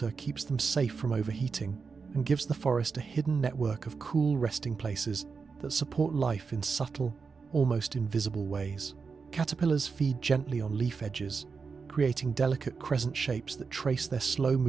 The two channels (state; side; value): quieter; left; 5.1 dB